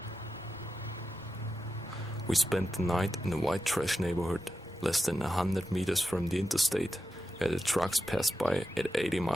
We spent the night in a white trash neighborhood less than 100 meters from the interstate, where the trucks passed by at 80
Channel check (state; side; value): normal; both; correlation 0.89